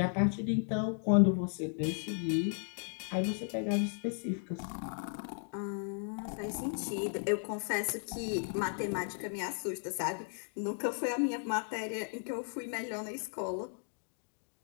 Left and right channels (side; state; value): right; silent; 54 dB below the other